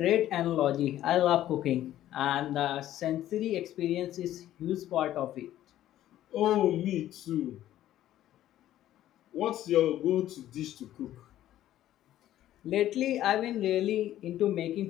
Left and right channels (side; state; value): right; quieter; 13.0 dB